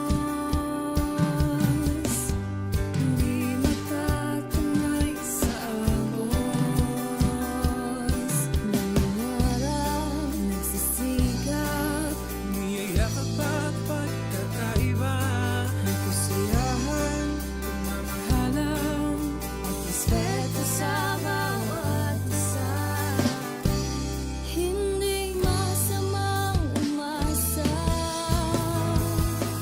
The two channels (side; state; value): both; identical; correlation 1.00